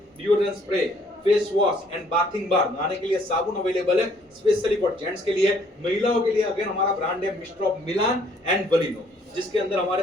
deodorant spray, face wash and bathing bar, नहाने के लिए साबुन अवेलेबल है स्पेशली फॉर जेंट्स के लिए। महिलाओं के लिए अगेन हमारा ब्रांड है मिस्टर ऑफ मिलान एंड बलिनो, जिसके अंदर हमारे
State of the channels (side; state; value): both; normal; correlation 0.63